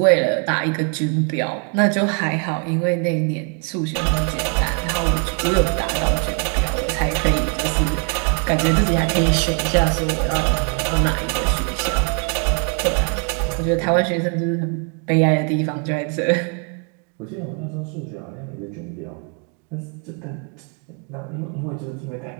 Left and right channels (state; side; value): quieter; left; 37.6 dB